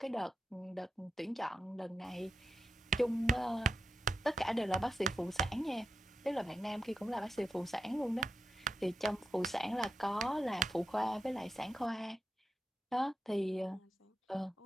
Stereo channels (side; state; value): both; normal; correlation 0.88